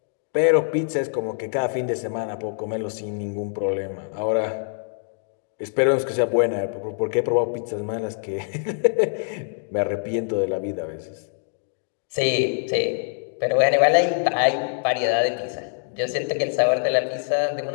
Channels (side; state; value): right; silent; digital silence